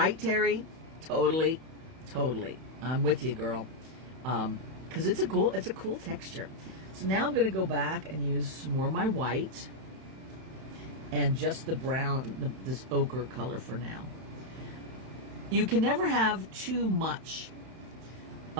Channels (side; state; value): left; late; 31 ms